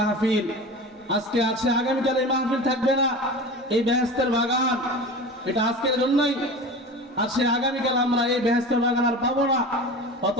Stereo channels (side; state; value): both; normal; correlation 0.33